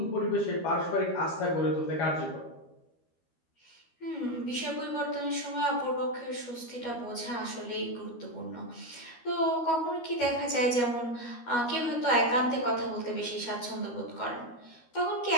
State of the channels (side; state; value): right; late; 12 ms